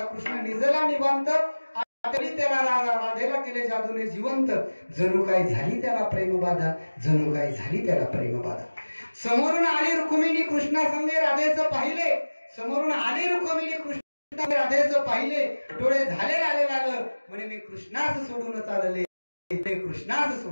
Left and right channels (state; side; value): inverted; both; correlation -1.00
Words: कृष्ण निजला निवांत आठवली त्याला राधा, राधेला केले जादूने जिवंत, जणू काय झाली त्याला प्रेमबाधा, जणू काय झाली त्याला प्रेमबाधा. समोरून आली रुक्मिणी कृष्णा संगे राधेचं पाहिले, समोरून आली रुक्मिणी कृष्णा राधेचं पाहिले, डोळे झाले लाले लाल, म्हणे मी कृष्णास सोडून चालले, कृष्णास